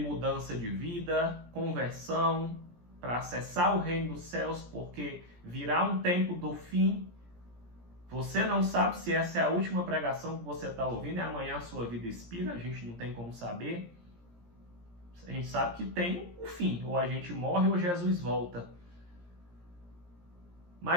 de vida, conversão, para acessar o reino dos céus, porque virá um tempo do fim. Você não sabe se essa é a última pregação que você está ouvindo e amanhã a sua vida expira, a gente não tem como saber. A gente sabe que tem o fim, ou a gente morre ou Jesus volta.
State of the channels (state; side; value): late; left; 17 ms